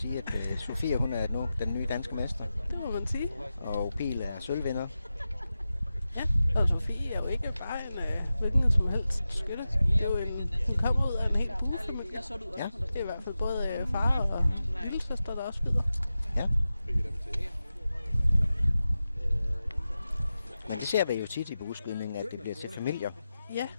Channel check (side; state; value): both; inverted; correlation -0.93